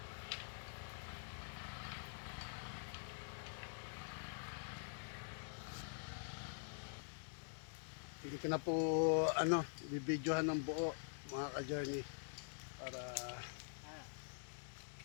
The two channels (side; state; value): right; silent; digital silence